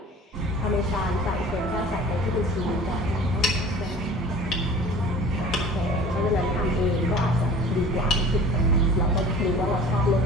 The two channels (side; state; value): both; normal; correlation 0.44